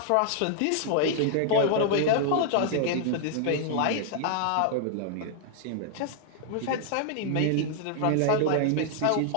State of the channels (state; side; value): different; both; correlation 0.00